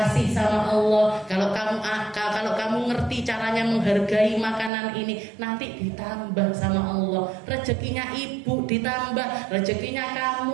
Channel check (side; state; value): left; drops out; at 4.7 s